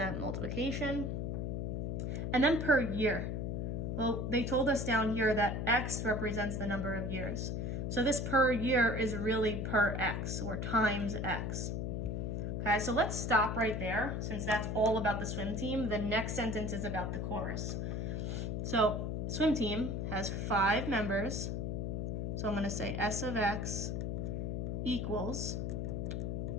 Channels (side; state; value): left; noise; hum, 1 dB below the sound